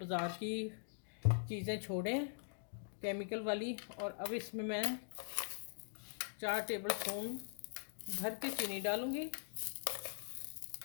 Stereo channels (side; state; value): right; silent; digital silence